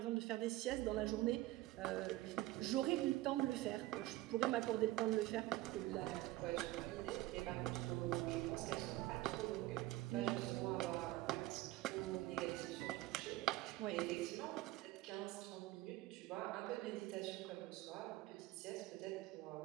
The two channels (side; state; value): left; quieter; 17.0 dB